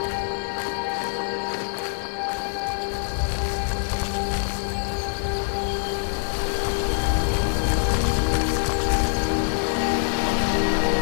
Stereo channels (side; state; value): right; silent; digital silence